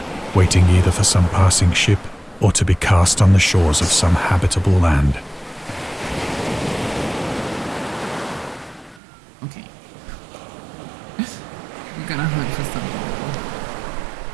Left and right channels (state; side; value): drops out; left; at 9.0 s